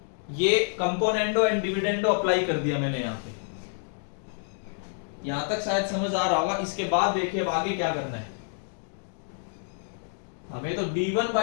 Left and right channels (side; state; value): right; silent; digital silence